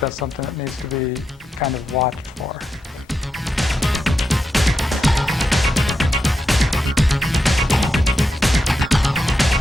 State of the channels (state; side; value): normal; both; correlation 0.86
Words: something that needs to be kind of watched for.